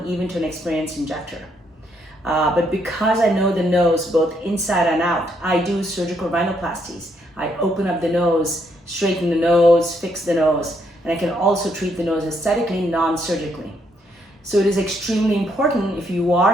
even to an experienced injector. But because I know the nose both inside and out, I do surgical rhinoplasties. I open up the nose, straighten the nose, fix the nose, and I can also treat the nose aesthetically, non-surgically. So it is extremely important, if you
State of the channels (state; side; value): normal; both; correlation 0.74